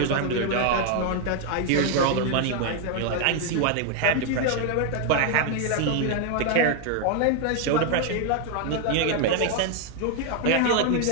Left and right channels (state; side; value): different; both; correlation 0.00